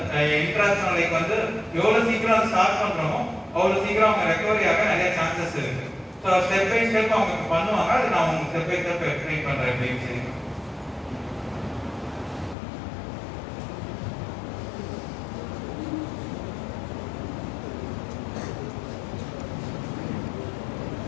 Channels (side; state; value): right; drops out; at 12.6 s